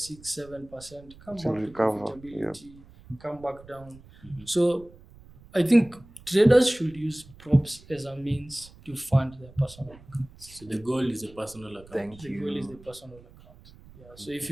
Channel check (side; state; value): right; noise; rumble, 22 dB below the sound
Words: 7%, come back to profitability, come back down. So I think traders should use props as a means to fund their personal account. So the goal is a personal account. The goal is the personal account. So if